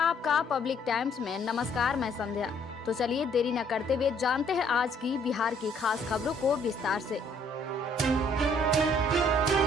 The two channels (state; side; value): normal; both; correlation 0.64